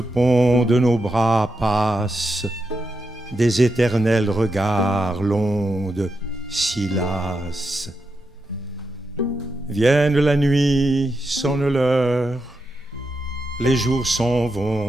pont de nos bras passent des éternels regards, l'onde si lasse. Vienne la nuit, sonne l'heure, les jours s'en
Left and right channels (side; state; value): both; normal; correlation 0.86